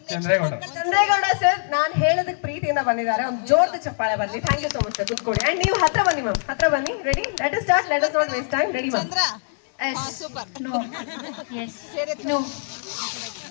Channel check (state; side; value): silent; right; digital silence